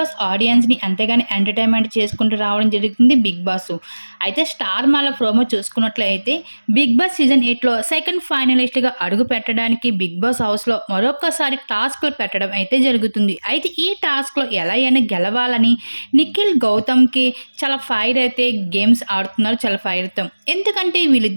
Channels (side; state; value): both; inverted; correlation -1.00